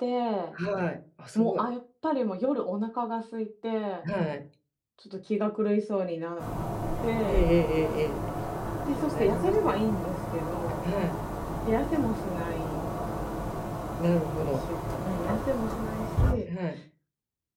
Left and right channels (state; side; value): identical; both; correlation 1.00